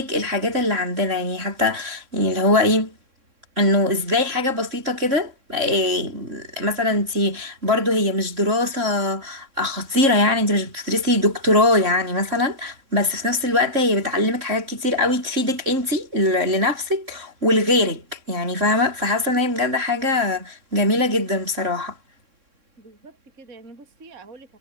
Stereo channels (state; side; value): late; left; 3.6 ms